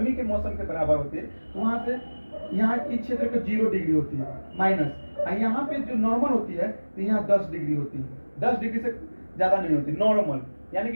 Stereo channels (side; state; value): both; inverted; correlation -1.00